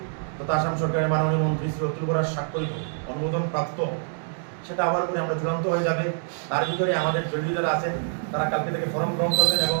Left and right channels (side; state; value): left; silent; digital silence